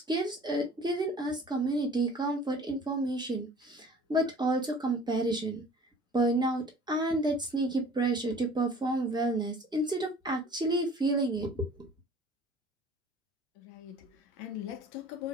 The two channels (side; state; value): both; normal; correlation 0.48